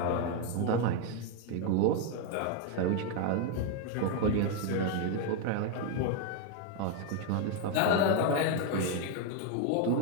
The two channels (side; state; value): both; different; correlation 0.01